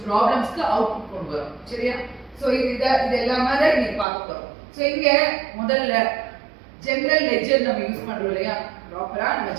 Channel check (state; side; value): drops out; left; at 4.0 s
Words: ப்ராப்ளம்ஸ்க்கு அவுட்புட் கொண்டு வரோம். சரியா? சோ இது எல்லாமே தான் இன்னைக்கு பார்க்க போறோம். சோ இங்க முதல்ல ஜெனரல் லெட்ஜர் நம்ம யூஸ் பண்றோம் இல்லையா, ப்ராப்பரா நம்ம